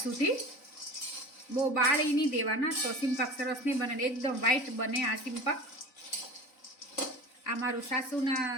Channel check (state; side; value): late; right; 3.9 ms